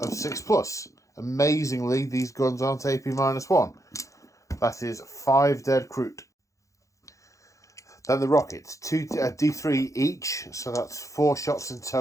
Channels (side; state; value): right; late; 0.15 ms